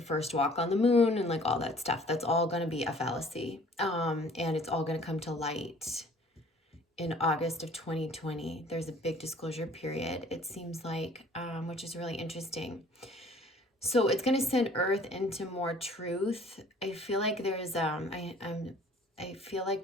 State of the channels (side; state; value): both; normal; correlation 0.53